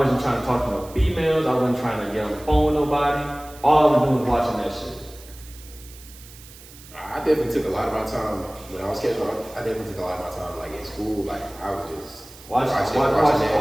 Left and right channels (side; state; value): right; noise; hiss, 20 dB below the sound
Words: trying to talk to no females. I wasn't trying to get on the phone with nobody. All I was doing was watching that shit. I definitely took a lot of my time when I was catching up. I definitely took a lot of my time, like in school. Like I was just I'm